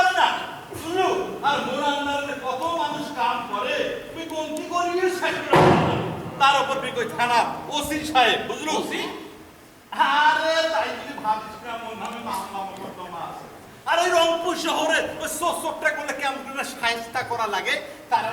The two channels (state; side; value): identical; both; correlation 1.00